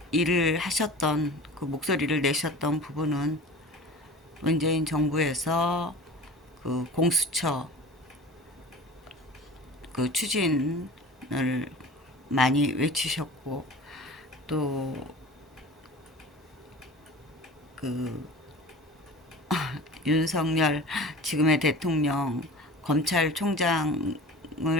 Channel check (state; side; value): normal; both; correlation 0.38